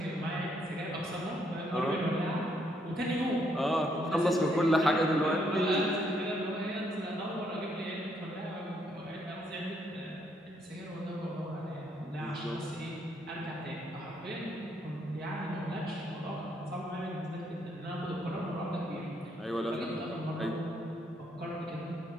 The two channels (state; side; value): normal; both; correlation 0.72